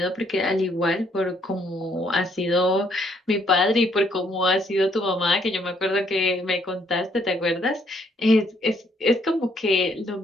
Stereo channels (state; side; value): normal; both; correlation 0.69